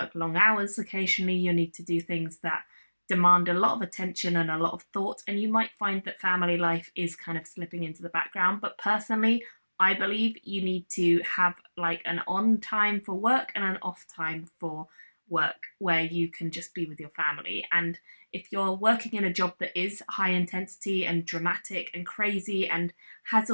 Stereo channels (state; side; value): inverted; both; correlation -1.00